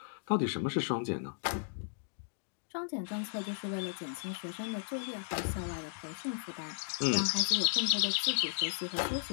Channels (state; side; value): silent; right; digital silence